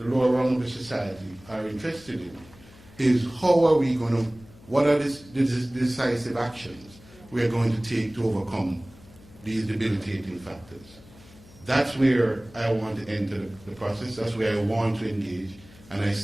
rung of the society, are interested in, is how are we going to, what are the decisive actions we are going to take to overcome these debilitating factors. That's where I want to enter the process. That's where I want to engage. And I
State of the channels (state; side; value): noise; left; hum, 23 dB below the sound